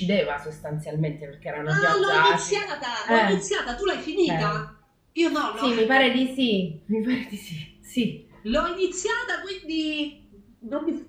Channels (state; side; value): identical; both; correlation 1.00